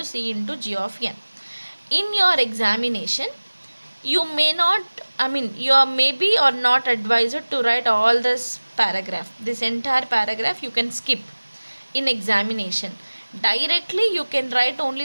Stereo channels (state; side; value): inverted; both; correlation -1.00